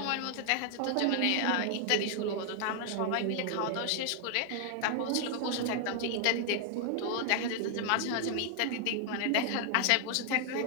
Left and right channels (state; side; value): different; both; correlation 0.00